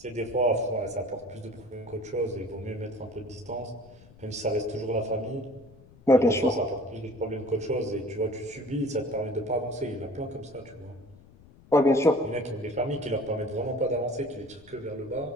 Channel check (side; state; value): left; noise; rumble, 24 dB below the sound